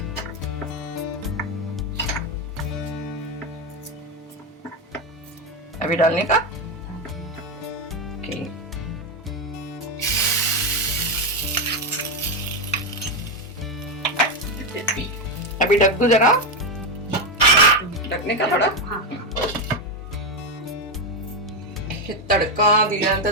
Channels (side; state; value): both; normal; correlation 0.09